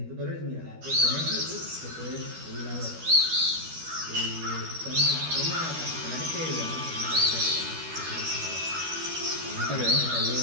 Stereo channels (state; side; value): late; left; 13 ms